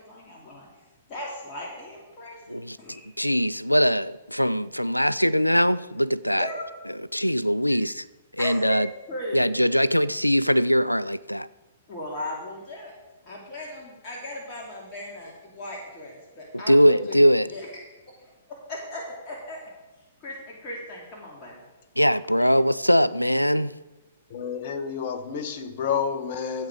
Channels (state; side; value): inverted; both; correlation -0.94